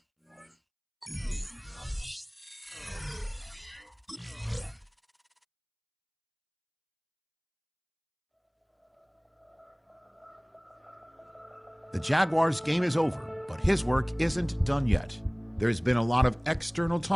The Jaguars' game is over, but his work isn't done yet. There's been a lot of external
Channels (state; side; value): identical; both; correlation 1.00